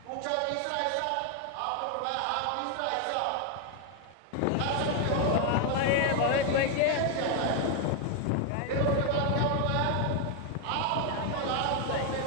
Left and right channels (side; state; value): both; different; correlation 0.01